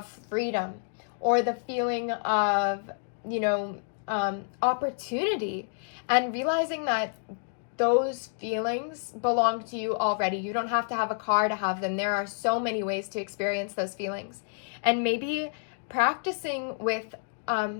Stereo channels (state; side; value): silent; right; digital silence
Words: freedom, or the feeling of, opportunity, and realizing that those feelings belong to you already. You don't have to have a car to have them. There are so many ways to experience those feelings. And maybe practicing with